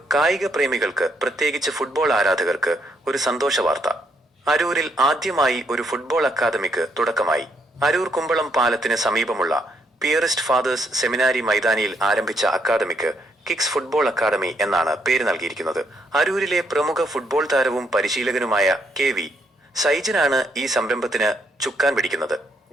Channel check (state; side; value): normal; both; correlation 0.74